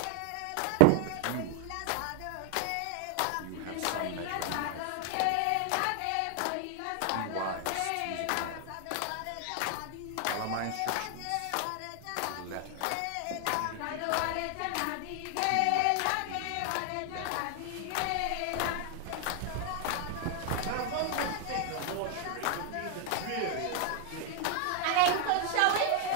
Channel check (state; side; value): different; both; correlation 0.00